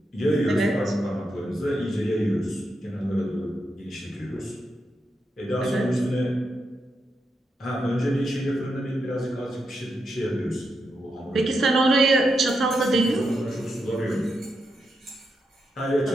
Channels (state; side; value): normal; both; correlation 0.84